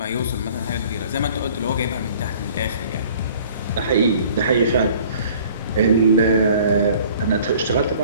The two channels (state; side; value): inverted; both; correlation -0.52